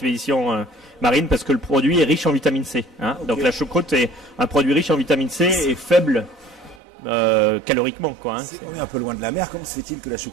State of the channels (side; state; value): left; drops out; at 6.8 s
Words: marines parce que le produit est riche en vitamine C. Hein. Okay. Donc la choucroute est un produit riche en vitamine C et faible caloriquement. Quoi, hein. On est un peu loin de la mer. Comment se fait-il que la